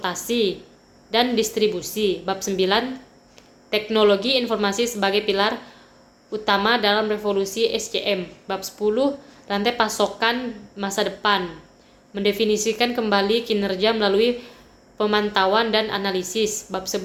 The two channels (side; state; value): both; identical; correlation 1.00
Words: dan distribusi. Bab 9, teknologi informasi sebagai pilar utama dalam revolusi SCM. Bab 10, rantai pasokan masa depan, mendefinisikan kembali kinerja melalui pemantauan dan analisis. Bab